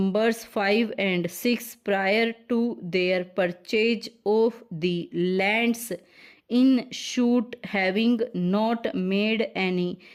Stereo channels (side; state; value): both; identical; correlation 1.00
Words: 5 and 6, prior to their purchase of the lands in suit, having not made any